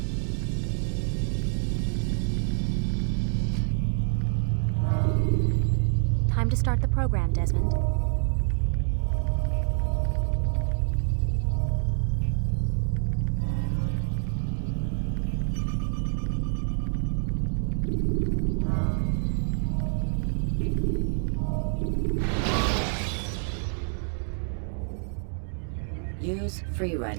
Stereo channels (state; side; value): silent; left; 56 dB below the other